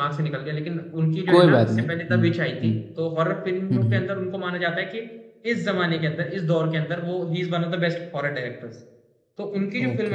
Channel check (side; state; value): both; identical; correlation 1.00